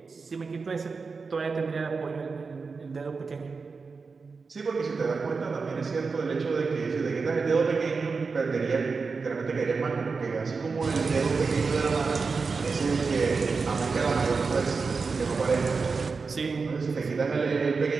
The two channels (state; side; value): quieter; left; 4.7 dB